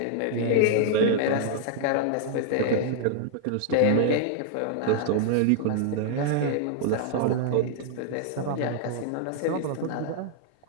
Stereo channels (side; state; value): both; different; correlation -0.01